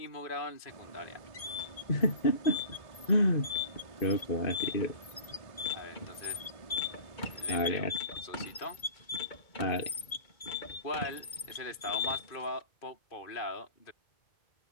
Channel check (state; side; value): late; right; 2.2 ms